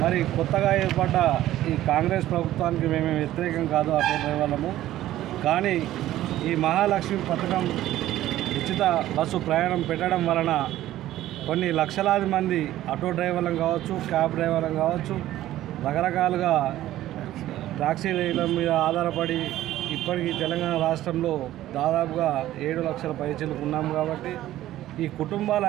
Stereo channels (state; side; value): quieter; left; 14.1 dB